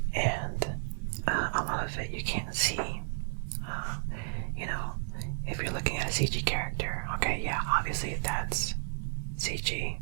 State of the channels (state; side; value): silent; left; 56 dB below the other